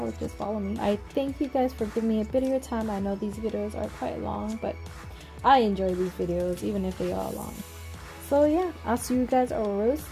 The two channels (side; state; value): both; identical; correlation 1.00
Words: just follow me. I thank you guys for giving me a bit of your time. I know these videos are quite long, but I enjoy these videos even if they are long. So yeah, I'll see you guys real